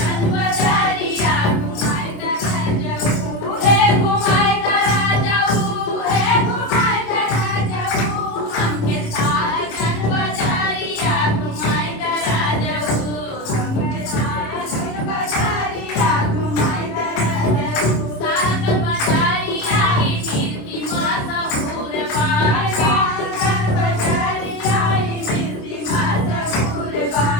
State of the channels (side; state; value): right; late; 27 ms